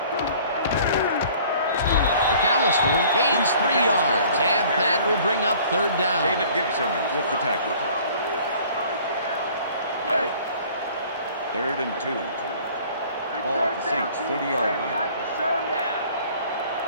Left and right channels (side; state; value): both; inverted; correlation -0.52